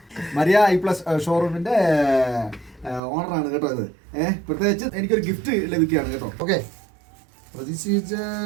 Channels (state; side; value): drops out; left; at 3.0 s